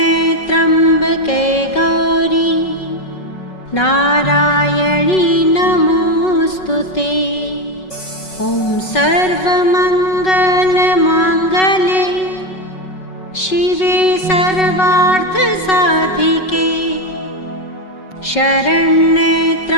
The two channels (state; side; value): late; right; 5.4 ms